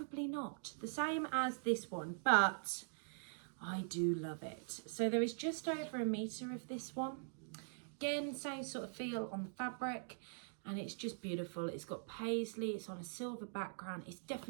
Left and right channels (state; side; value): silent; left; digital silence